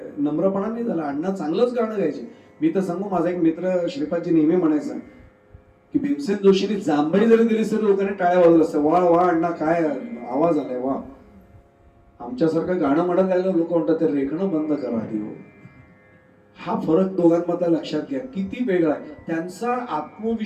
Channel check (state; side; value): identical; both; correlation 1.00